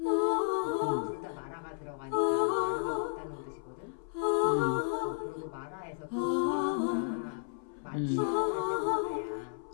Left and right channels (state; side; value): silent; right; 56 dB below the other